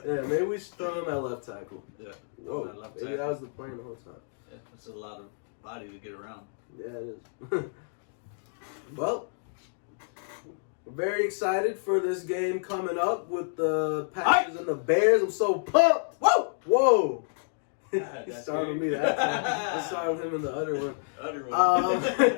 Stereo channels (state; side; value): silent; right; digital silence